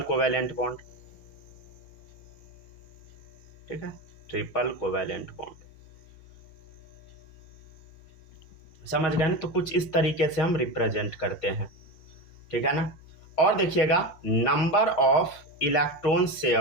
कोवेलेंट बॉन्ड। ठीक है, ट्रिपल कोवेलेंट बॉन्ड। समझ गए ना। तो कुछ इस तरीके से हम रिप्रेजेंट करते हैं। ठीक है ना। और देखिएगा नंबर ऑफ इलेक्ट्रॉन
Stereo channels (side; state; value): right; late; 6.5 ms